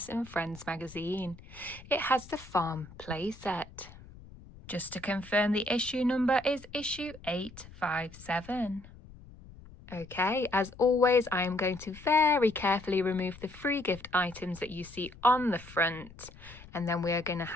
and Friends magazine. It has the farm playset. Just to confirm, the issue number is issue 857. Okay, as always, I am going to very carefully remove the free gift items that you see on the front, and then we are going to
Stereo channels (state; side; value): noise; left; rumble, 19 dB below the sound